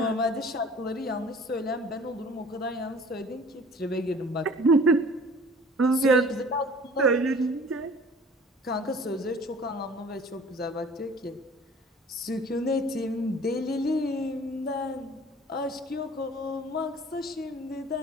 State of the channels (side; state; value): both; normal; correlation 0.48